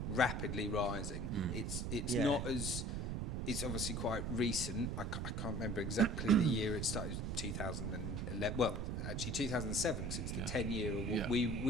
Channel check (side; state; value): right; noise; rumble, 2 dB below the sound